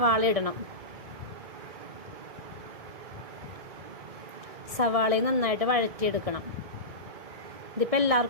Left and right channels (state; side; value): late; left; 1.7 ms